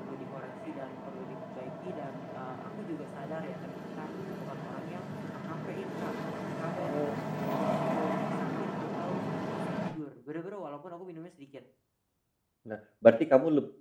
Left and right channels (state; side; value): identical; both; correlation 1.00